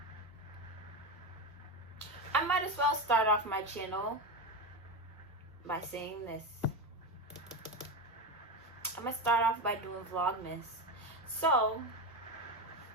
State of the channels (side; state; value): both; normal; correlation 0.17